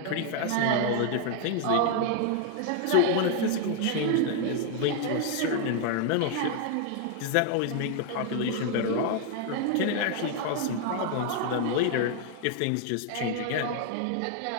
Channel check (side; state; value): both; different; correlation 0.00